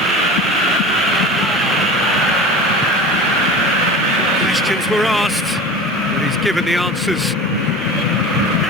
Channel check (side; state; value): both; normal; correlation 0.34